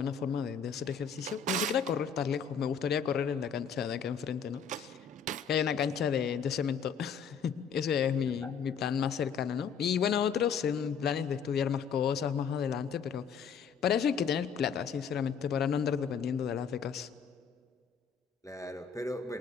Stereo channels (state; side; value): quieter; right; 6.7 dB